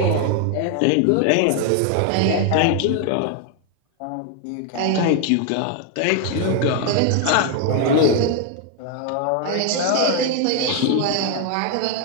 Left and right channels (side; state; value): both; different; correlation 0.00